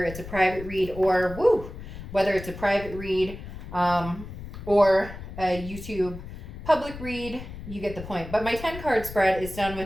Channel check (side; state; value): left; noise; rumble, 12 dB below the sound